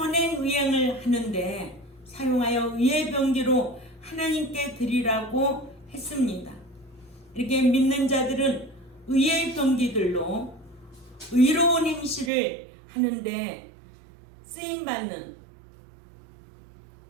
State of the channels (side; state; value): left; drops out; at 12.3 s